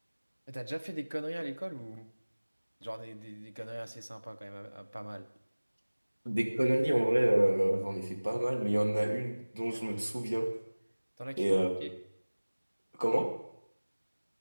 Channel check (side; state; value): both; inverted; correlation -1.00